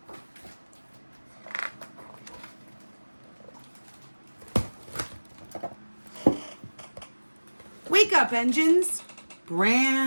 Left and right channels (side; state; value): both; inverted; correlation -1.00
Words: Wake up, engines.